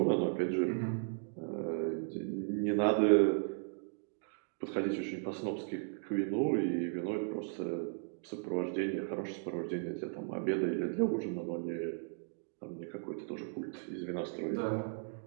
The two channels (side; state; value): left; silent; digital silence